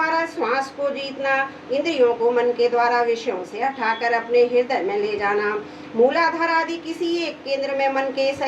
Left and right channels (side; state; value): both; identical; correlation 1.00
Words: श्वास को जीतना, इंद्रियों को मन के द्वारा विषयों से हटाकर अपने हृदय में ले जाना, मूलाधार आदि किसी एक केंद्र में मन के